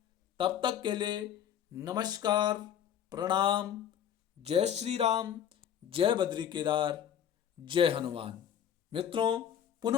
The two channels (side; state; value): right; quieter; 9.6 dB